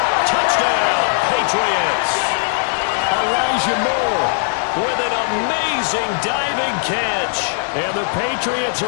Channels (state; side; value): silent; right; 67 dB below the other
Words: Touchdown, Patriots. Elijah Moore with an amazing diving catch. And the Patriots